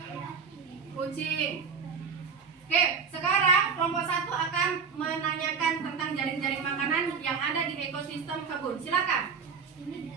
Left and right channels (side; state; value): left; quieter; 5.8 dB